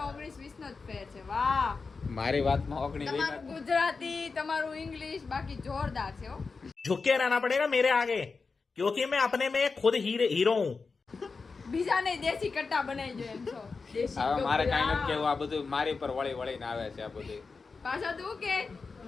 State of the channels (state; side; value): quieter; right; 4.5 dB